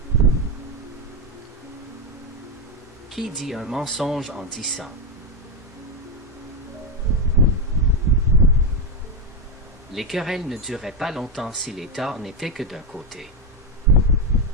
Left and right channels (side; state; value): both; normal; correlation 0.07